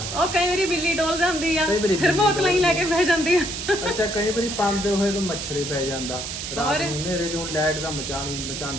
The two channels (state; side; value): noise; right; hiss, 6 dB below the sound